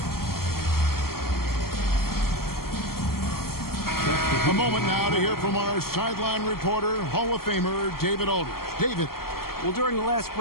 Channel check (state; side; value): late; right; 0.93 ms